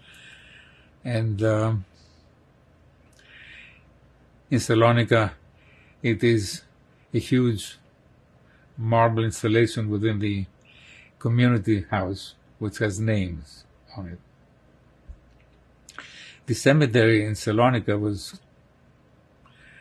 And in Salonika, it is a huge marble installation within the community house, which has names on it. The cemetery in Salonika was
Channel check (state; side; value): identical; both; correlation 1.00